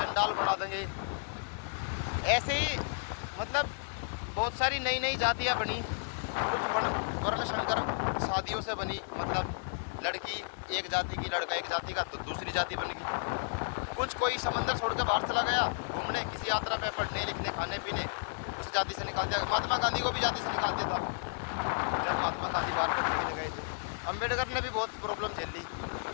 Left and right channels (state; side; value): silent; right; 56 dB below the other